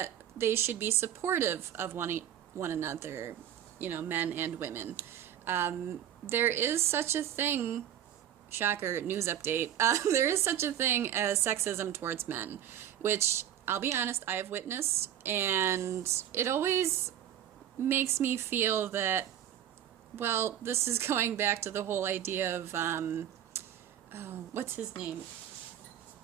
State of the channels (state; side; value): quieter; left; 10.7 dB